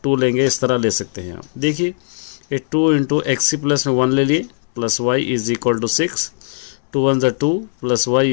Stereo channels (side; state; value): right; silent; 67 dB below the other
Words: 2 लेंगे, इस तरह ले सकते हैं आप। देखिए ये 2 इंटू एक्स प्लस में 1 ले लिए plus y is equal to 6, 2 1 2 plus y